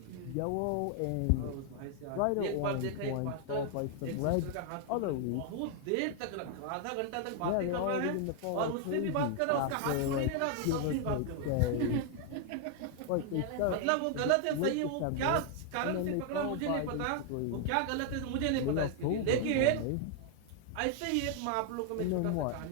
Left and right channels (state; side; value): different; both; correlation 0.00